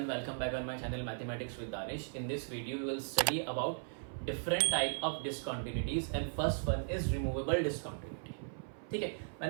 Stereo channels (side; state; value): left; silent; 53 dB below the other